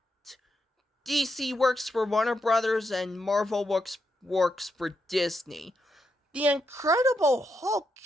DC works for Warner Brothers and Marvel works for Disney. The Incredible Hulk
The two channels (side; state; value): both; normal; correlation 0.82